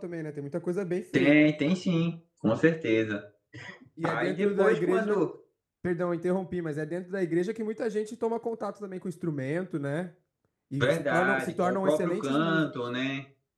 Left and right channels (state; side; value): identical; both; correlation 1.00